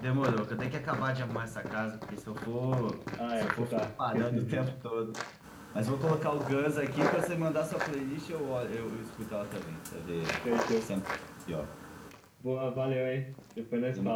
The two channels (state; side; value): identical; both; correlation 1.00